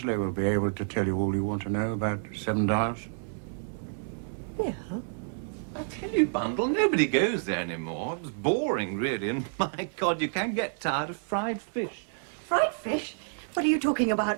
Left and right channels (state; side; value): silent; left; digital silence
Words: will be able to tell you all you want to know about Seven Dials. Bill? I tell you, Bundle, nobody goes there anymore. It was boring, really, and my God, you can get tired of fried fish. Fried fish? What are you talking